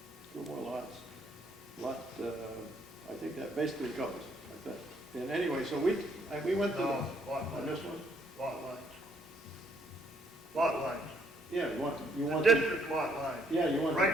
2 more lots. I think that basically covers it, I think. And anyway, so we went to No, lot on lines. this one. Lot lines. Lot lines. Yeah, you want The district lot lines. Yeah, you want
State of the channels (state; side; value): normal; both; correlation 0.68